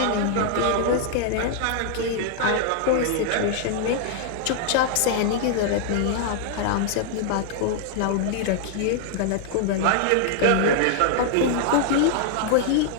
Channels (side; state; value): both; different; correlation 0.00